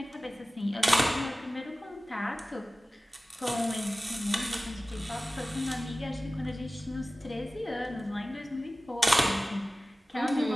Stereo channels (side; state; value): both; normal; correlation 0.97